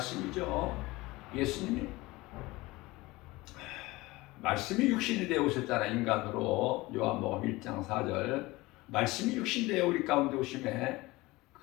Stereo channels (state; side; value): quieter; right; 20.8 dB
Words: 예수님이 말씀이 육신이 되어 오셨잖아. 인간으로 요한복음 1장 4절 말씀이 육신 되어 우리 가운데 오심에